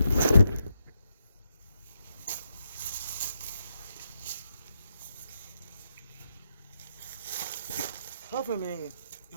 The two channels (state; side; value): inverted; both; correlation -0.83